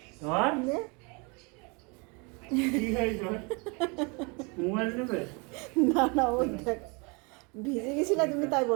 আর কি হয়েছে? মোবাইল নেবে? না না, ওই দেখ ভিজে গেছিলা তুমি, তাই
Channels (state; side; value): quieter; left; 30.6 dB